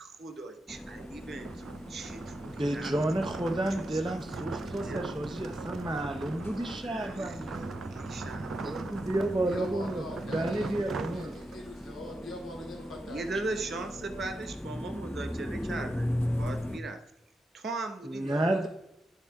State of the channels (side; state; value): both; normal; correlation 0.86